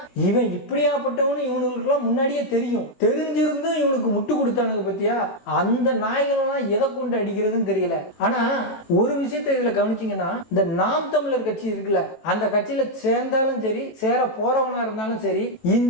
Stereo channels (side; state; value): right; late; 19 ms